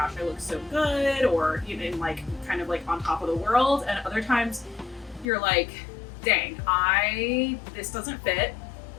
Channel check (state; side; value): drops out; right; at 5.3 s